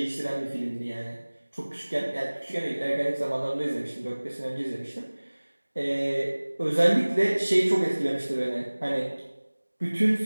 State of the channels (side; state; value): both; inverted; correlation -1.00